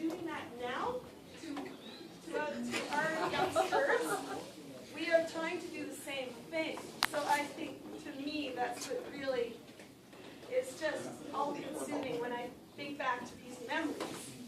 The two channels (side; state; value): both; identical; correlation 1.00